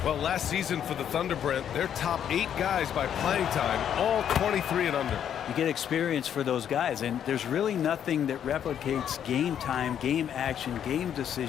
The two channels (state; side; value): quieter; right; 9.3 dB